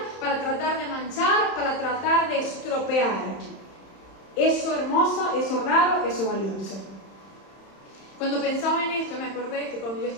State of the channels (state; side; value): late; right; 31 ms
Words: para tratar de manchar, para tratar de estropear. Eso hermoso, eso raro, eso valioso. Cuando pensaba en esto, me acordé que cuando yo